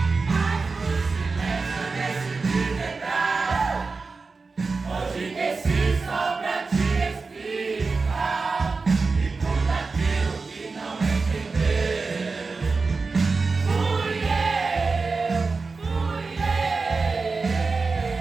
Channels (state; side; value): quieter; left; 4.2 dB